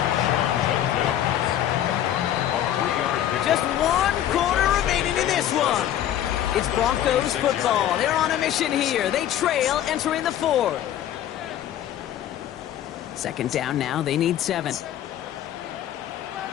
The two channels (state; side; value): quieter; right; 11.5 dB